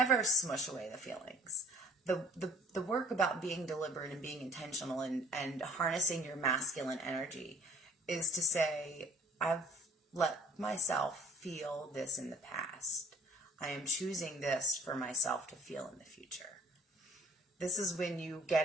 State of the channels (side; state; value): both; normal; correlation 0.53